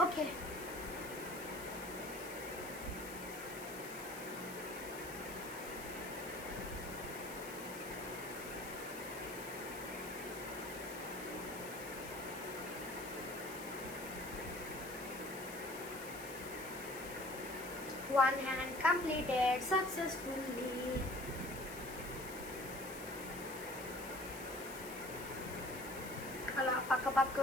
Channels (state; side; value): noise; left; hiss, 12 dB below the sound